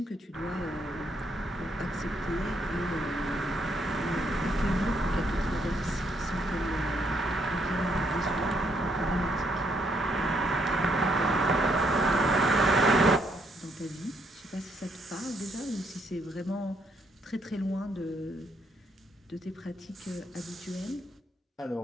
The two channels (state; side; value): normal; both; correlation 0.73